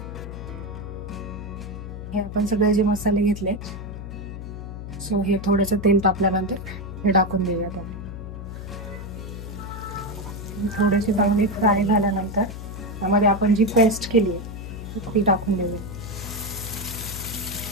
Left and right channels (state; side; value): noise; left; hum, 9 dB below the sound